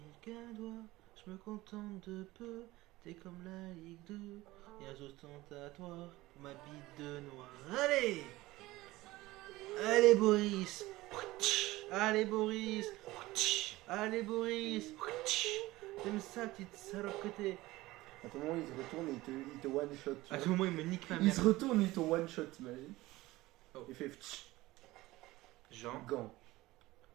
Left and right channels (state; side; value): quieter; left; 18.7 dB